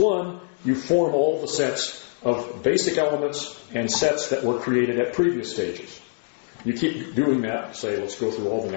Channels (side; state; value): right; silent; 58 dB below the other